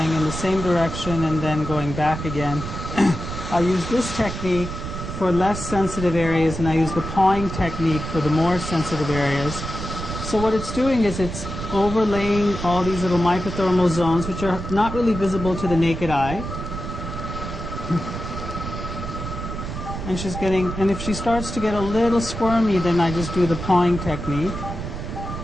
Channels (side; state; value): right; noise; rumble, 7 dB below the sound